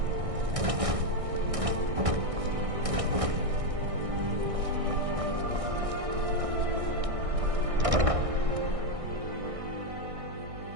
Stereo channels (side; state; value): left; late; 1.6 ms